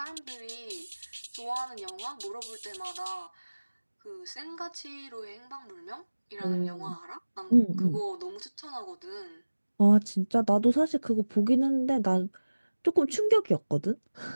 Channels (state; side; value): inverted; both; correlation -1.00